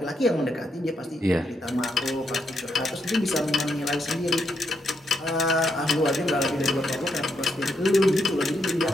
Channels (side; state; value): both; normal; correlation 0.78